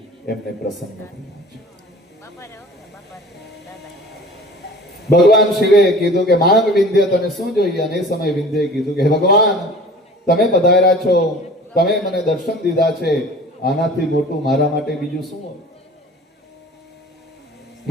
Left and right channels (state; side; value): normal; both; correlation 0.44